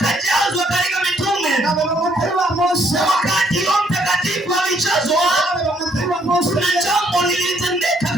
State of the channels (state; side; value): normal; both; correlation 0.69